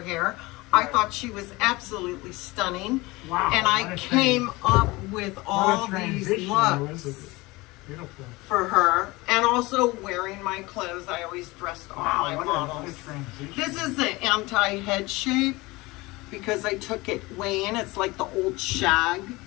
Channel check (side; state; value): right; quieter; 22.1 dB